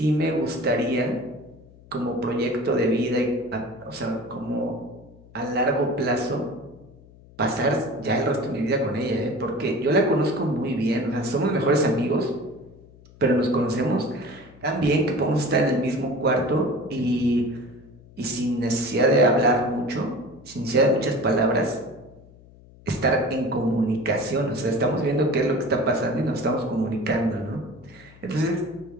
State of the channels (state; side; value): noise; left; hum, 23 dB below the sound